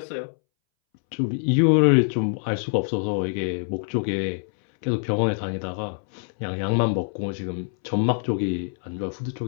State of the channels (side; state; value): right; silent; 62 dB below the other